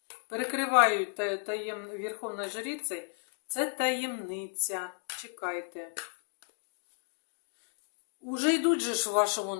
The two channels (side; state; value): right; silent; 56 dB below the other